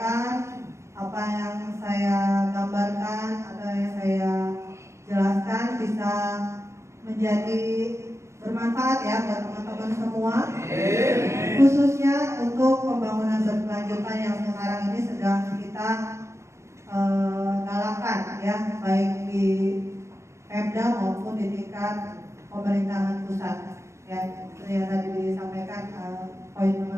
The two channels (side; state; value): left; late; 0.14 ms